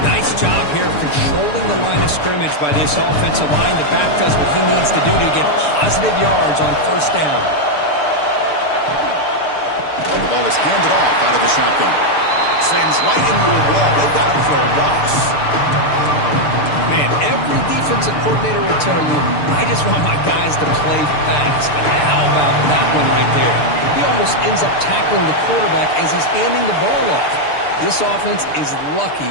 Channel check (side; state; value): right; late; 6.8 ms